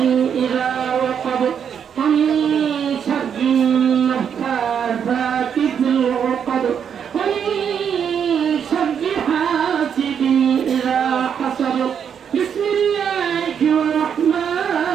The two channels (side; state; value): left; quieter; 7.8 dB